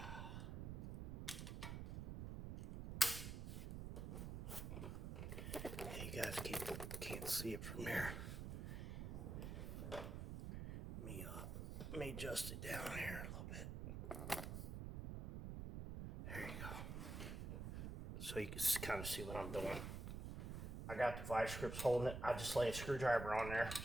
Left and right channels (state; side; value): noise; right; rumble, 5 dB below the sound